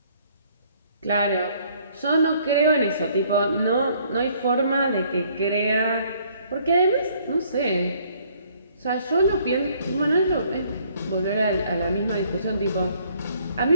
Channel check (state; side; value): inverted; both; correlation -0.63